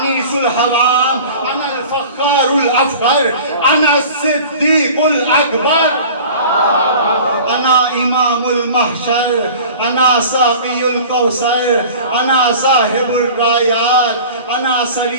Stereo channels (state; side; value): inverted; both; correlation -0.41